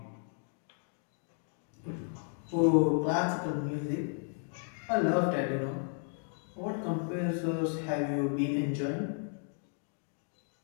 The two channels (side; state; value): right; silent; 55 dB below the other